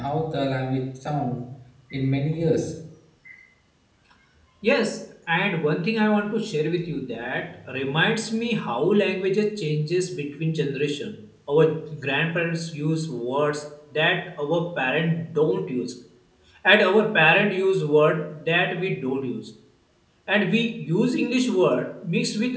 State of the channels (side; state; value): both; identical; correlation 1.00